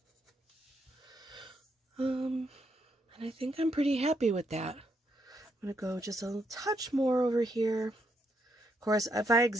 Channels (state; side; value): normal; both; correlation 0.77